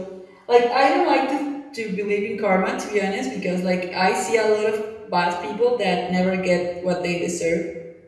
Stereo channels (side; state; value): both; identical; correlation 1.00